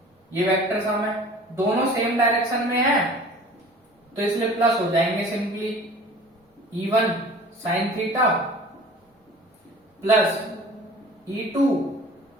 ये वेक्टर सम है, दोनों सेम डायरेक्शन में है तो इसलिए प्लस हो जाएंगे simply. E1 sin theta plus E2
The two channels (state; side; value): normal; both; correlation 0.45